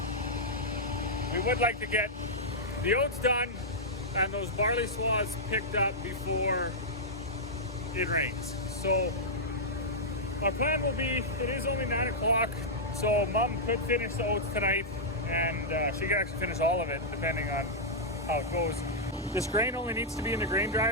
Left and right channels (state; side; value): normal; both; correlation -0.09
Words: We would like to get the oats done and those barley swaths picked up before it rains. So our plan will be, it is only 9 o'clock, so Mom could finish the oats tonight, and she could actually finish all of it depending on how it goes. This grain only needs to be in the grain